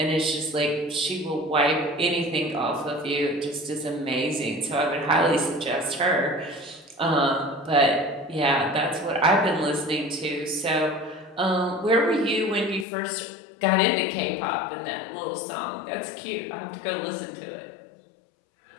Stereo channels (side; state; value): right; drops out; at 12.9 s